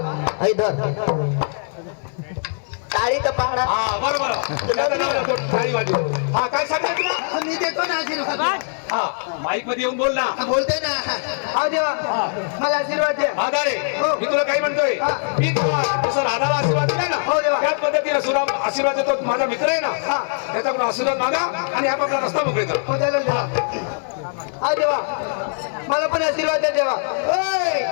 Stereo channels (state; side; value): silent; right; 65 dB below the other